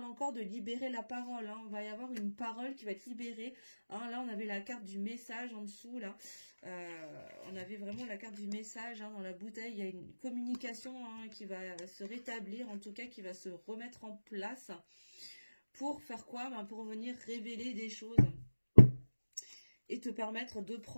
encore de libérer la parole. Hein. On va y avoir une parole qui va être libérée. Hein. Là, on avait la carte du message en dessous, là. On avait vraiment la carte du message hein, dans la bouteille. Il y a une communication hein, qui va se rétablir, en tout cas, qui va se remettre en place. Pour faire quoi? Ben, pour venir révéler des choses. Et te permettre de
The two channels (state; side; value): inverted; both; correlation -1.00